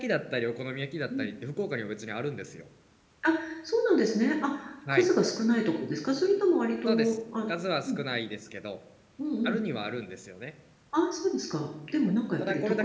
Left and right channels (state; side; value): identical; both; correlation 1.00